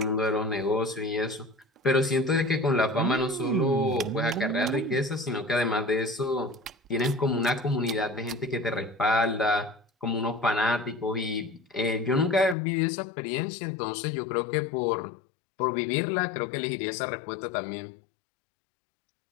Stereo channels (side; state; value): right; drops out; at 12.6 s